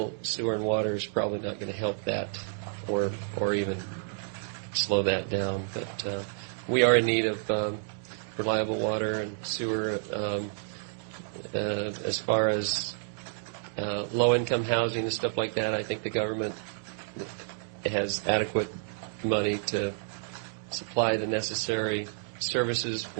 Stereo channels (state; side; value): silent; left; digital silence